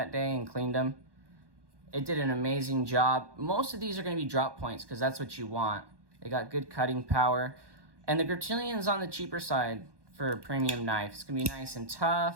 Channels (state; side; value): late; left; 1.1 ms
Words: day and cleaned them. It did an amazing job. Most of these are going to be drop points because that's what you want. They got good cutting power. And the Griptilian's on the cheaper side for a premium knife. It's going to be nice and